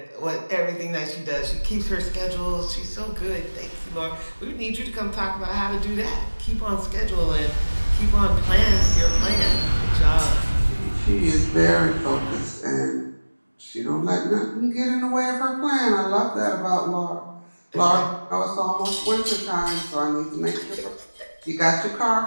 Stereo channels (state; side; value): inverted; both; correlation -1.00